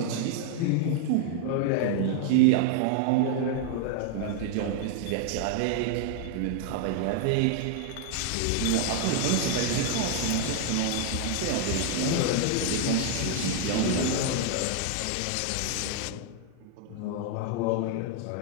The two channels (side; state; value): both; different; correlation 0.00